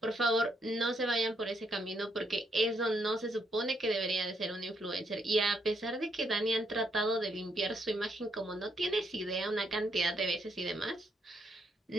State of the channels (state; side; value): normal; both; correlation 0.75